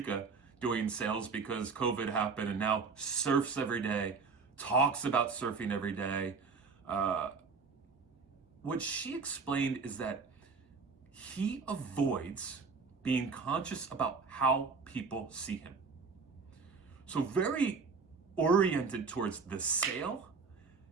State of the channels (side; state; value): left; quieter; 4.9 dB